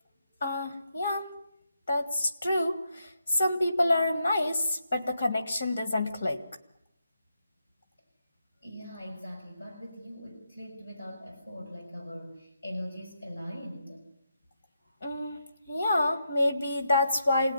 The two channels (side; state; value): both; inverted; correlation -0.83